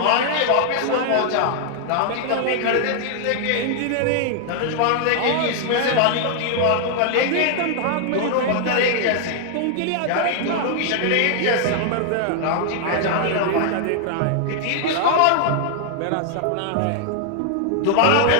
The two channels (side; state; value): both; different; correlation 0.00